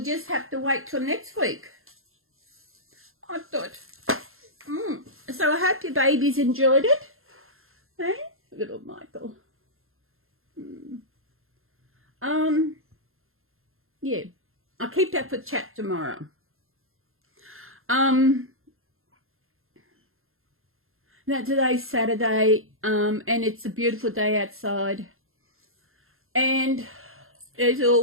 just have to wait till next week. I thought. So I hope your babies enjoyed it. Hey, little Michael. Yeah, I'll keep that for chat tomorrow. Now today's Saturday, and it's a beautiful day outside. And as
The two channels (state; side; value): late; left; 0.61 ms